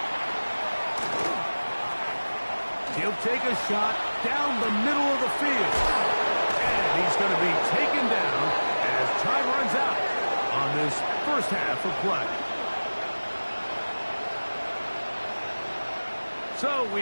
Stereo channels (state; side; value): inverted; both; correlation -1.00